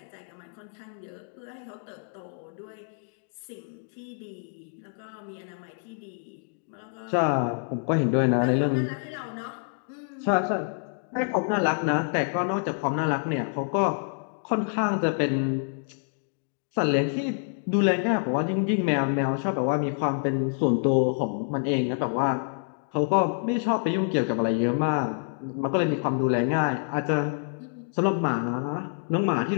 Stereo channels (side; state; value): right; silent; digital silence